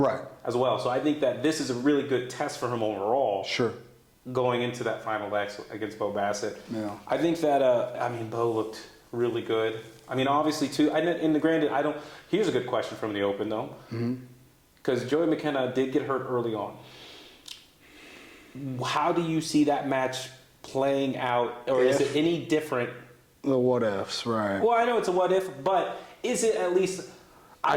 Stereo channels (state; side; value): identical; both; correlation 1.00